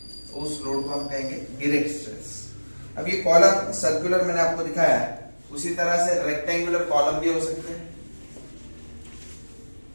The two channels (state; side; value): inverted; both; correlation -1.00